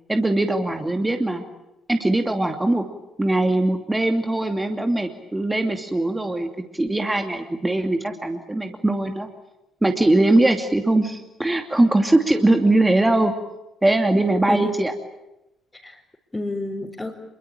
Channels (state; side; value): normal; both; correlation 0.96